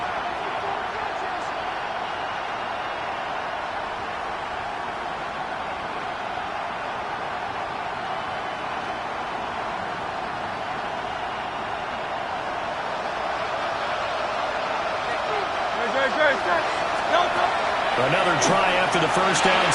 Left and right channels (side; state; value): both; identical; correlation 1.00